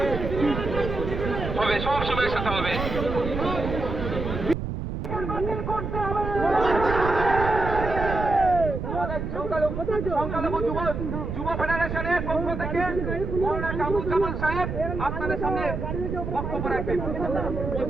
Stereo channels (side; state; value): right; noise; rumble, 5 dB below the sound